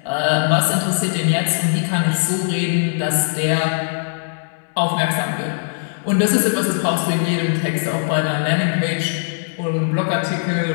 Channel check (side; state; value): right; silent; digital silence